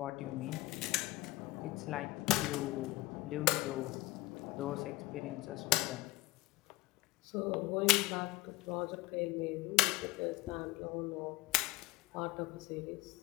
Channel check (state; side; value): quieter; right; 19.8 dB